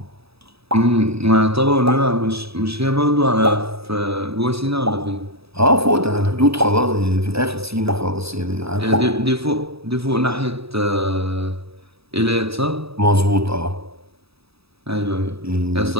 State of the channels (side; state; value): left; late; 0.77 ms